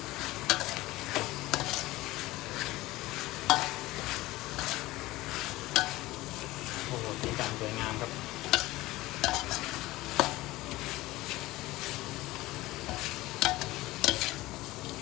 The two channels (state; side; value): quieter; right; 18.5 dB